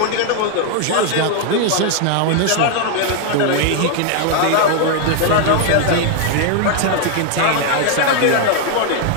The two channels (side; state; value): both; different; correlation 0.00